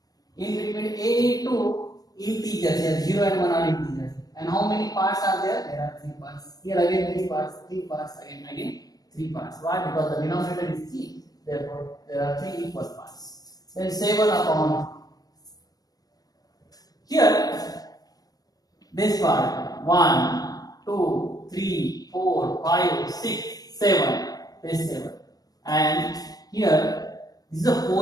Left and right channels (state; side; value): late; right; 0.18 ms